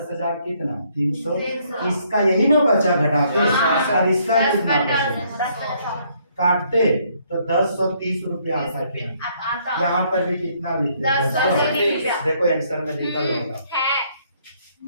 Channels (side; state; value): both; inverted; correlation -0.68